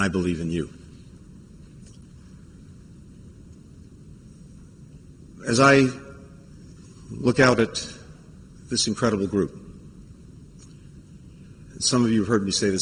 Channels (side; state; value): both; identical; correlation 1.00